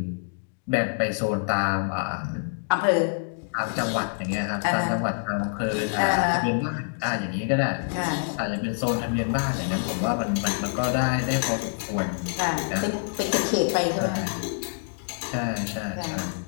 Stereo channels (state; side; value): silent; right; digital silence